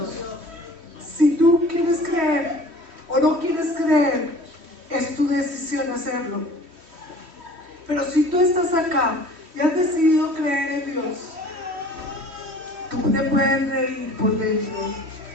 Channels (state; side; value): late; left; 3.1 ms